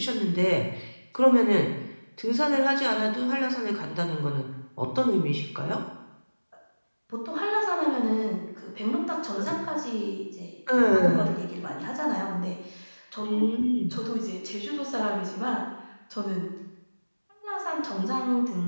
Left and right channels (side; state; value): both; inverted; correlation -1.00